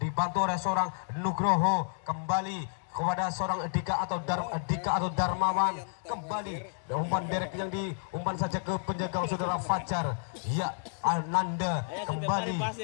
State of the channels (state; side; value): silent; right; digital silence